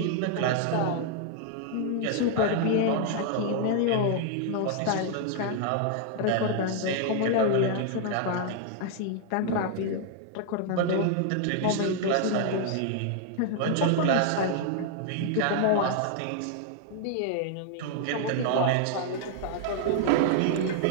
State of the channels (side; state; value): both; different; correlation -0.01